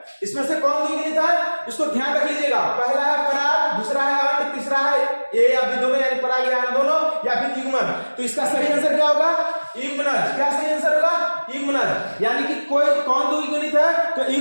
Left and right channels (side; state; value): both; inverted; correlation -1.00